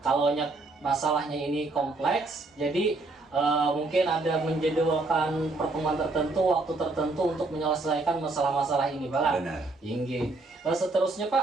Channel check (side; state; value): left; quieter; 3.3 dB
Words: kalau masalahnya ini kompleks, jadi mungkin ada menjadwalkan pertemuan tertentu, waktu tertentu untuk menyelesaikan masalah-masalah ini Pak. benar. Seterusnya